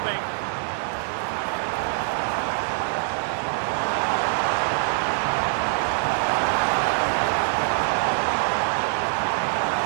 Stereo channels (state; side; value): silent; left; digital silence